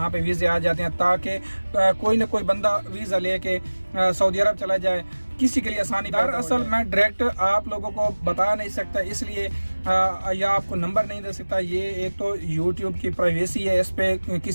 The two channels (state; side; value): inverted; both; correlation -1.00